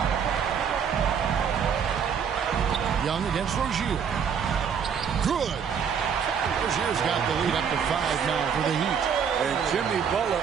Young against Rozier. Good. Rozier's got the lead up to 5 now for the Heat. And Jimmy Butler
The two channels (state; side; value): quieter; left; 7.2 dB